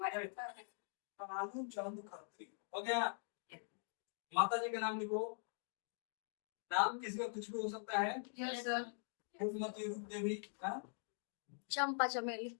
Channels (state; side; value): silent; right; digital silence